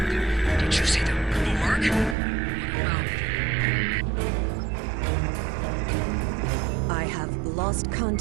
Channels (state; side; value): drops out; left; at 2.1 s